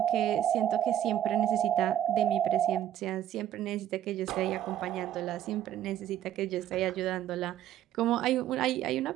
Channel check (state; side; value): quieter; left; 11.3 dB